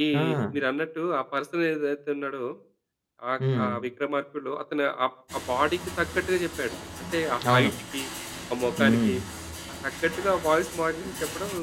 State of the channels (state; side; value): identical; both; correlation 1.00